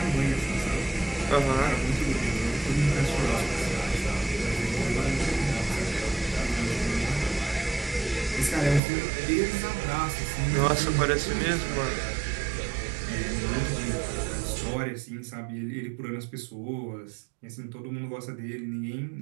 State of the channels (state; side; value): drops out; left; at 8.8 s